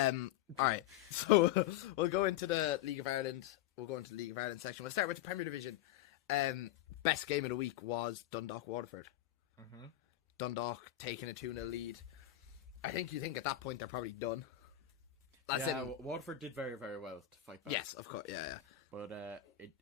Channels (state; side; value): quieter; right; 13.0 dB